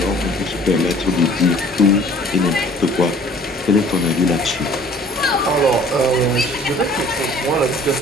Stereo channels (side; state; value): both; normal; correlation 0.52